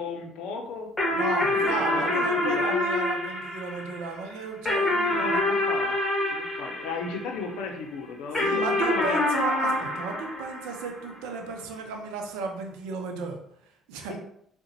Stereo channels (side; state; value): both; normal; correlation 0.53